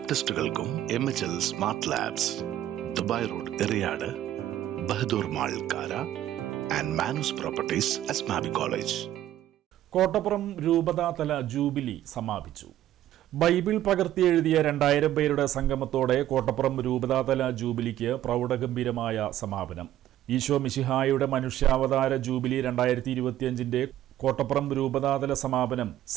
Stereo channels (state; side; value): quieter; left; 12.8 dB